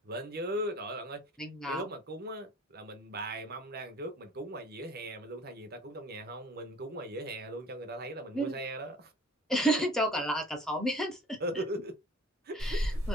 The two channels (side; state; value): both; normal; correlation 0.49